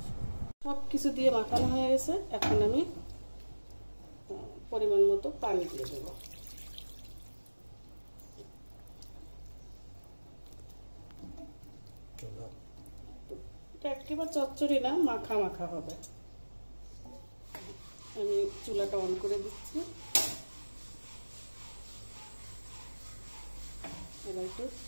সব কিছু দিয়ে মাখানো হয়ে গেছে। এখন আমি পরিমাণ মতো পানি দিয়ে দেবো। একেবারে চচ্চড়ি না, মাখা মাখা হবে। আমি চুলাটা অন করে দিচ্ছি। এবার একটু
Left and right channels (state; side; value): inverted; both; correlation -1.00